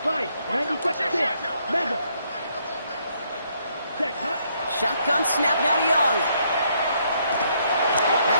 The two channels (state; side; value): inverted; both; correlation -0.71